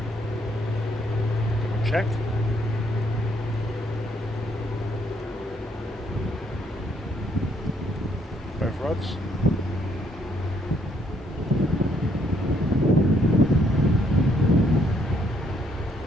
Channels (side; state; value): both; normal; correlation 0.70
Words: Double check. Both rods.